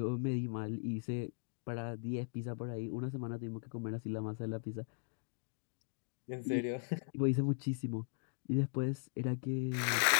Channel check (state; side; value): silent; right; digital silence